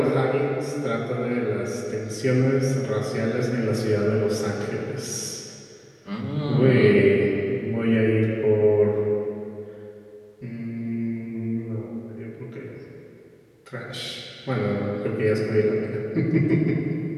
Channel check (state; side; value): identical; both; correlation 1.00